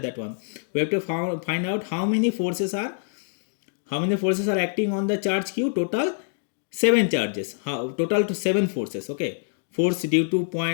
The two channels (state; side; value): silent; right; digital silence